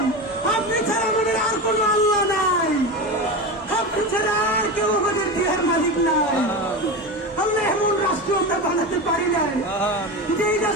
আপনি ছাড়া আমাদের আর কোন আল্লাহ নাই, আপনি ছাড়া আর কেউ আমাদের দেহের মালিক নাই। আল্লাহ এমন রাষ্ট্র আমরা বানাতে পারি নাই যে এই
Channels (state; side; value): normal; both; correlation 0.23